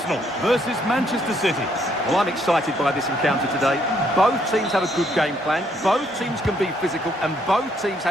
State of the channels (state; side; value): normal; both; correlation 0.70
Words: versus Manchester City. Well, I'm excited by this encounter today. Both teams have a good game plan, both teams can be physical, and both teams